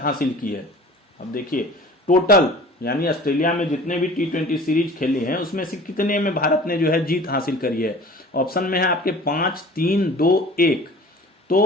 की है? अब देखिए, टोटल यानी ऑस्ट्रेलिया में जितने भी T20 सीरीज खेले हैं उसमें से कितने में भारत ने जो है जीत हासिल करी है? ऑप्शन में है आपके 5, 3, 2, 1।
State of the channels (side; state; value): both; normal; correlation 0.44